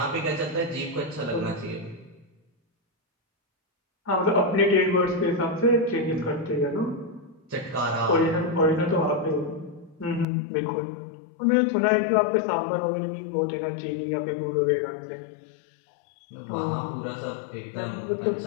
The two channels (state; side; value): drops out; right; at 10.2 s